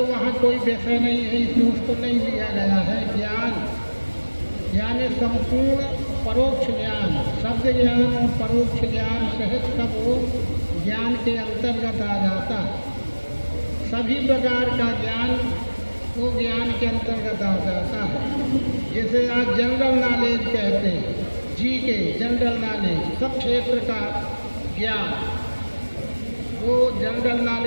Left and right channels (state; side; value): inverted; both; correlation -1.00